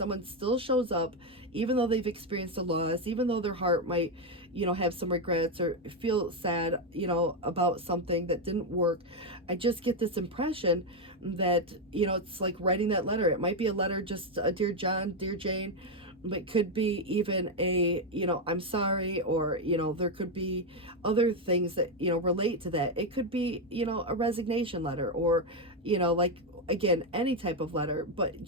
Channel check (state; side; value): normal; both; correlation 0.05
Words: still shows up even though they've experienced a loss, even though their heart might, you know, have some regrets or feel sad, you know, about something that didn't work. I just get this impression that, you know, it's like writing that letter. It might be a letter, just a dear John, dear Jane, but it could be even a, you know, I'm sorry, or, you know, there could be other things that, you know, relate to that. It could be, you know, a resignation letter, or, you know, like, again, any type of letter, but